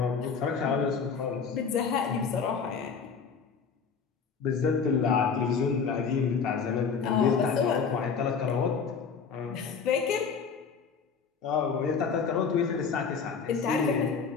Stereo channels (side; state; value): right; quieter; 5.9 dB